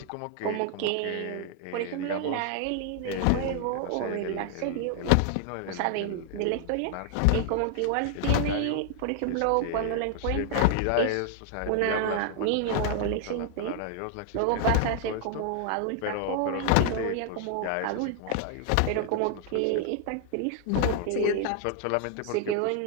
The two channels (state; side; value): different; both; correlation 0.00